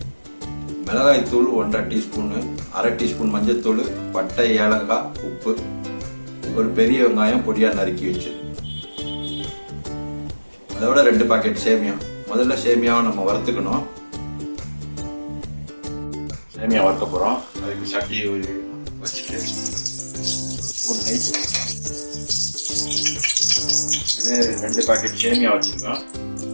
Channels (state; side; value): inverted; both; correlation -1.00